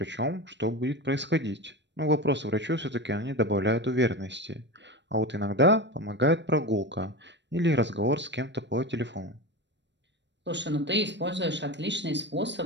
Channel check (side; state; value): left; late; 0.52 ms